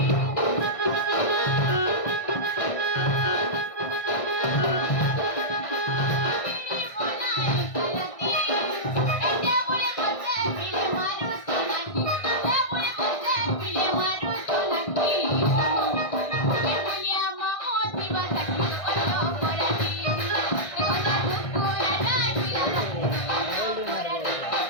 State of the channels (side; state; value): right; late; 1.6 ms